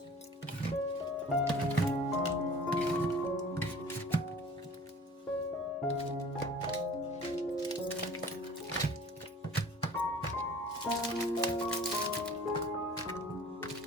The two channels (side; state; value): both; normal; correlation 0.46